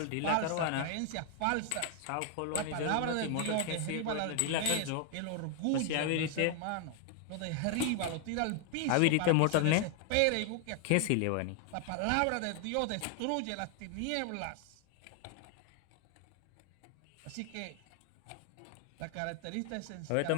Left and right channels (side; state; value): both; different; correlation 0.00